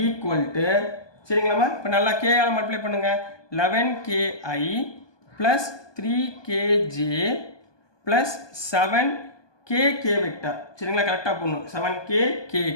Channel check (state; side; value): late; right; 1.2 ms